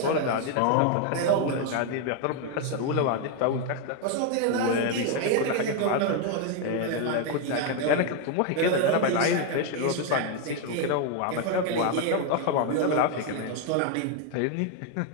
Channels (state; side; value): different; both; correlation 0.01